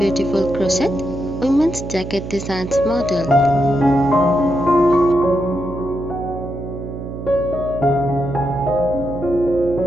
crochet women's jacket designs model.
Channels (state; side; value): noise; right; hum, 8 dB below the sound